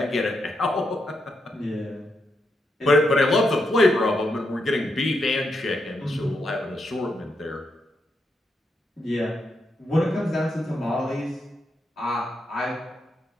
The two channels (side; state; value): both; normal; correlation 0.82